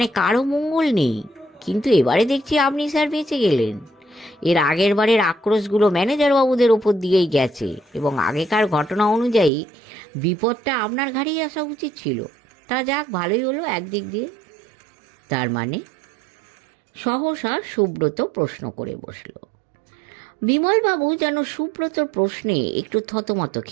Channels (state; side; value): drops out; left; at 9.5 s